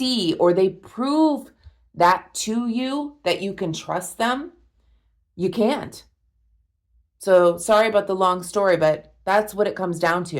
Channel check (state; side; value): identical; both; correlation 1.00